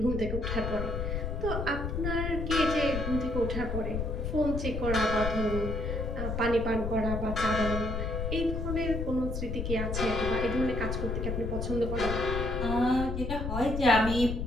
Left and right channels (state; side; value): noise; left; rumble, 3 dB below the sound